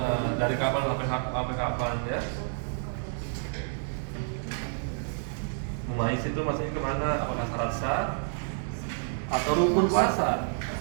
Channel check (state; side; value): silent; left; digital silence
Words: dari kapan sampai kapan ya? Mais itu maksudnya kemana? Apakah syarat sah atau rukun puasa?